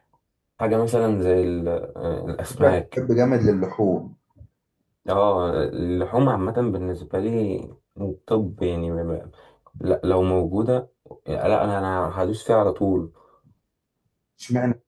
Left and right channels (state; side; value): identical; both; correlation 1.00